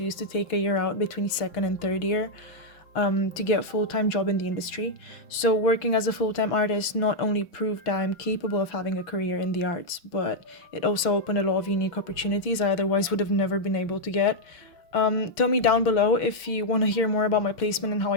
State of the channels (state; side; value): late; right; 6.1 ms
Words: to take a year out between second and third year to get a full-time job in the industry. So working as a full-time artist not only proved that I'm capable of having a career in the arts, but it also opened a lot of unique opportunities I otherwise would have never been able to get. Tell me down below if you want to hear more about my placement and how